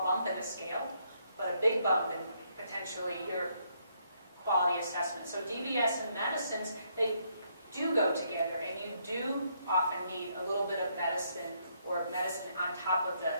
bump in the scale, but a big bump in potentially your quality assessment. So DBS and medicines, they do go together, and you do often need a little bit of medicine or medicine on top of the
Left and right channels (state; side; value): inverted; both; correlation -0.73